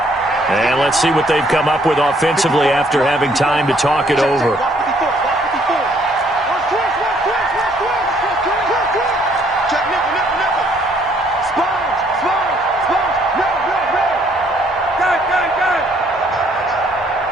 And let's see what they've come up with offensively after having time to talk it over.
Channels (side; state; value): both; normal; correlation 0.65